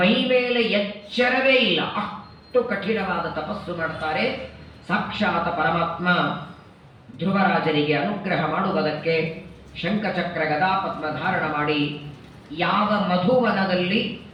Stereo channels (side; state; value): both; identical; correlation 1.00